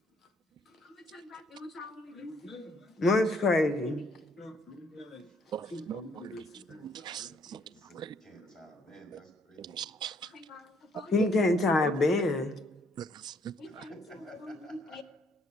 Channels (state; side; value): normal; both; correlation 0.67